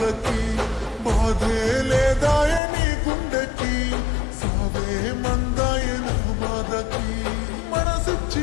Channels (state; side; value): drops out; right; at 2.6 s